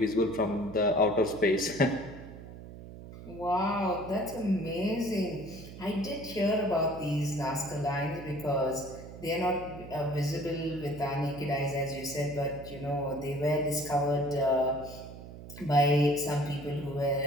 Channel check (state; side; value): noise; right; hum, 14 dB below the sound